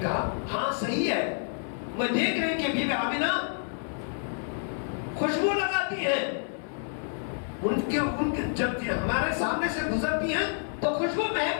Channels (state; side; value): silent; right; 59 dB below the other